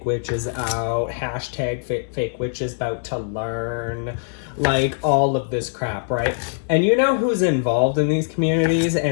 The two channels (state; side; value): silent; right; digital silence